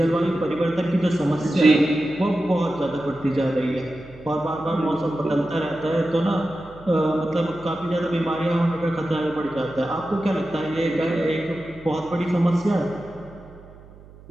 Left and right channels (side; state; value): right; noise; hum, 21 dB below the sound